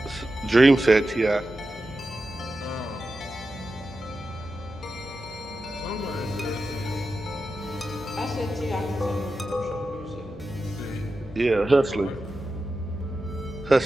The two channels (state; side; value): noise; left; hum, 16 dB below the sound